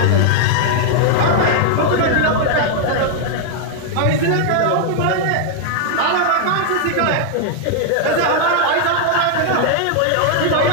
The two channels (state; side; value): different; both; correlation 0.00